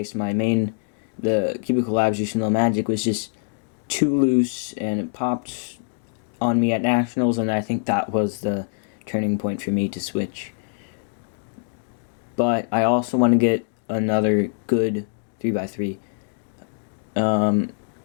My main, the Cubicle Labs Yushin Low Magic, was just too loose and it popped on me at nationals, and I think that was the turning point for me to switch. But I also want to get another good 3x3.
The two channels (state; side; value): silent; right; digital silence